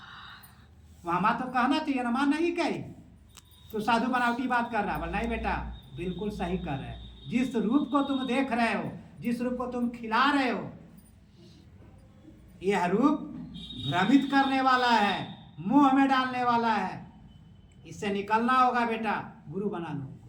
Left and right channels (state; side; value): identical; both; correlation 1.00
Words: वहाँ माँ तो कहना चाहिए ना, माँ नहीं कही तो साधु बनावटी बात कर रहा है। बोल नहीं बेटा, बिल्कुल सही कर रहे हैं। जिस रूप को तुम देख रहे हो, जिस रूप को तुम खिला रहे हो, यह रूप भ्रमित करने वाला है, मुंह में डालने वाला है। इससे निकलना होगा बेटा, गुरु बना लो।